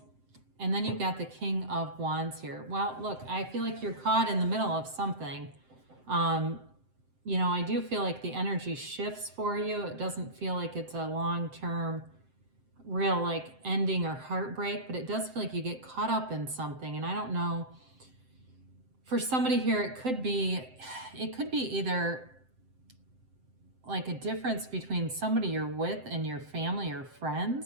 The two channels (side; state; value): left; late; 7.7 ms